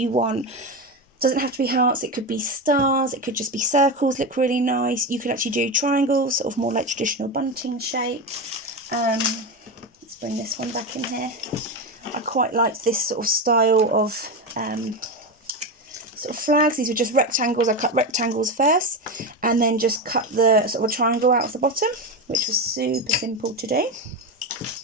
want. It doesn't have to be hearts, it could be stars, it could just be circles, look really nice. You could actually do triangles, sort of more like traditional bunting shape. Let's bring this one back in here. I quite like this sort of style of sort of flags. These were just rectangles. I cut rectangles first and then just cut the sort of a triangle out of the bottom, which was super simple to do.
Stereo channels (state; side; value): normal; both; correlation 0.17